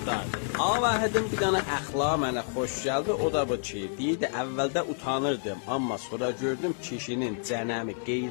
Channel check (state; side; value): silent; right; 59 dB below the other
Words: Avahidin bir dana əxlaqı mənə xoş gəldi, o da bu ki, deyirdi əvvəldə utanırdım, amma sonra gördüm kişinin cənəmi,